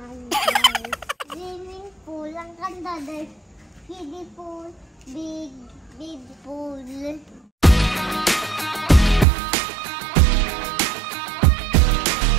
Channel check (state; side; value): drops out; left; at 9.2 s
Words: guys. Swimming pool. Ang ganda dahil kiddie pool. Big pool.